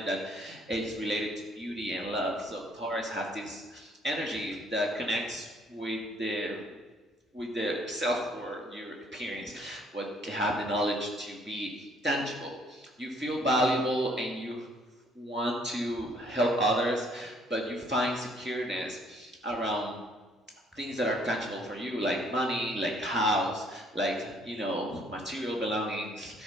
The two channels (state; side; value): normal; both; correlation 0.63